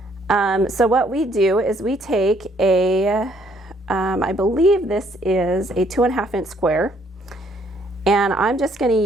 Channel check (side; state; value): both; normal; correlation 0.66